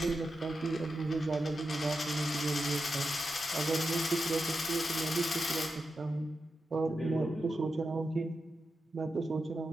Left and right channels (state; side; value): normal; both; correlation 0.89